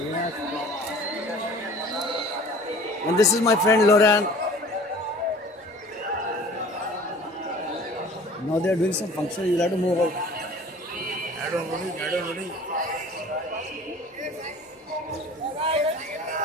And this is my friend Loran. Now they are doing some function, you'll have to move out.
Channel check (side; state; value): both; normal; correlation 0.47